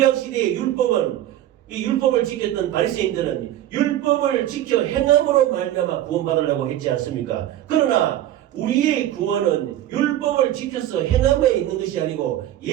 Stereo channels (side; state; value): left; quieter; 12.9 dB